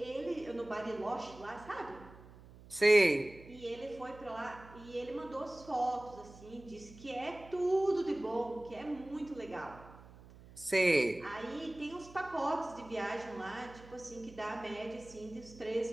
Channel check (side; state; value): right; noise; hum, 19 dB below the sound